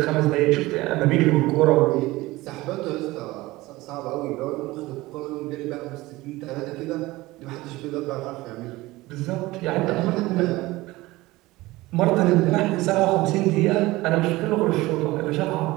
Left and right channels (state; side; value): quieter; left; 19.5 dB